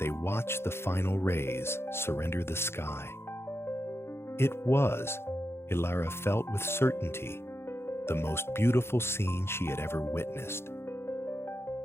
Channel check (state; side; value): late; right; 0.12 ms